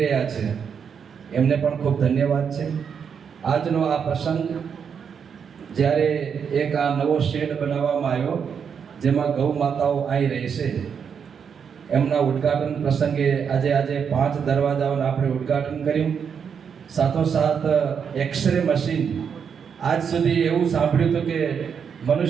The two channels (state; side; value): quieter; left; 7.0 dB